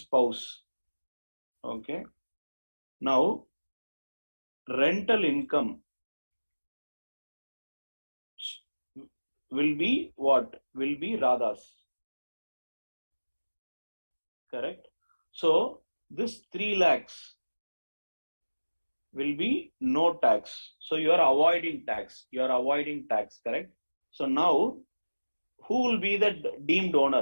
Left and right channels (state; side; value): inverted; both; correlation -1.00